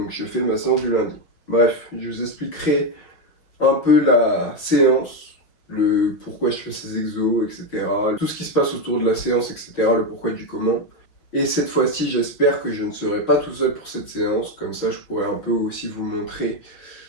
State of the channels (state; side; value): late; right; 6.1 ms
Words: je fais ma séance du lundi. Bref, je vous expliquerai un peu la séance, le pourquoi je fais ces exos, etc. Tout ce qui se passe autour de la séance, etc. Le pourquoi du comment. Et cette fois-ci, j'espère que je ne serai pas tout seul pour cette séance. Comme ça, je pourrai un peu aussi vous montrer